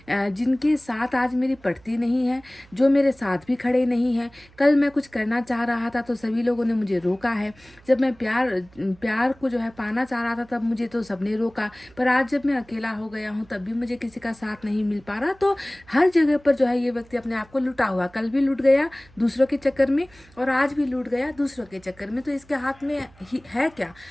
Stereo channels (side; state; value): right; noise; hum, 27 dB below the sound